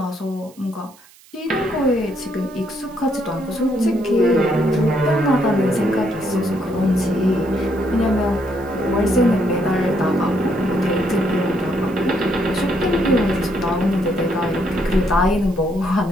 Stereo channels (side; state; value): right; noise; hiss, 26 dB below the sound